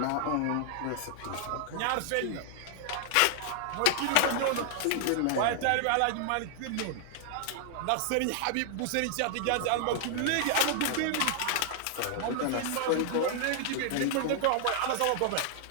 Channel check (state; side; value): different; both; correlation 0.00